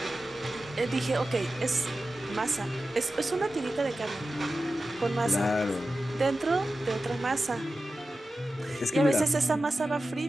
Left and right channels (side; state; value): both; normal; correlation 0.93